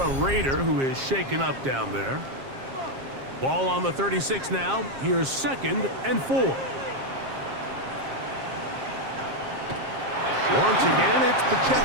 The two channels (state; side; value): late; left; 7.4 ms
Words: Raider who is shaken up down there. Ball on the 36 now. Here's 2nd and 4. Once again, it's